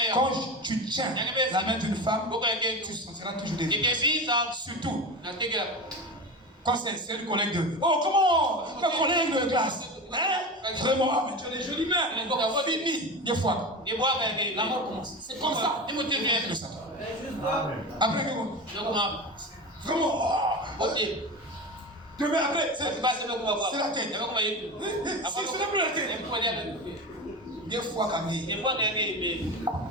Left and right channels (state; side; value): normal; both; correlation 0.26